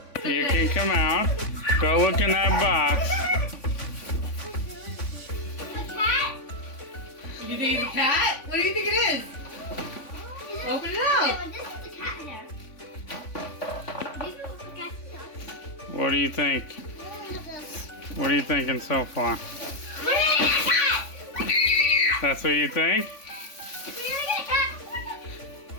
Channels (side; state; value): right; late; 3.5 ms